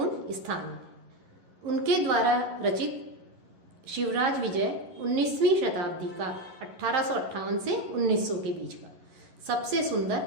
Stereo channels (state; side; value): late; left; 11 ms